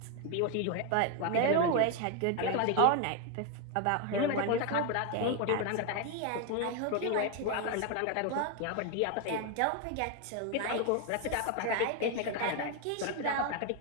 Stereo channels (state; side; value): different; both; correlation 0.01